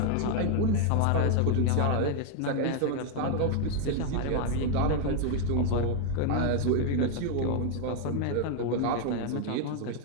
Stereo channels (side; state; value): both; different; correlation 0.00